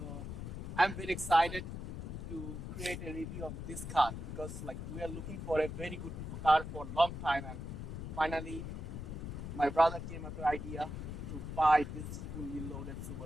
I'm very excited to create a review of this car because like we are looking for a very good car for a long time, and finally my brother came up with the idea to buy this fully loaded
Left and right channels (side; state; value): left; noise; rumble, 6 dB below the sound